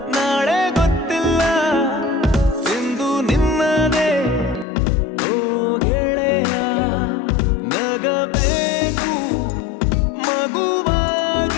ನಾಳೆ ಗೊತ್ತಿಲ್ಲ ಇಂದು ನಿನ್ನದೇ ಓ ಗೆಳೆಯ ನಗಬೇಕು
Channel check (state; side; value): drops out; right; at 4.7 s